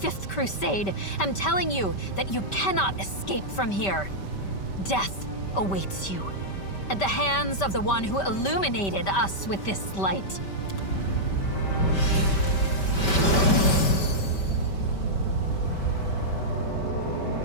Crusade, am telling you that you cannot escape from here. Death awaits you, at the hands of the one who illuminated us with this light.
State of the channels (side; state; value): right; late; 5.2 ms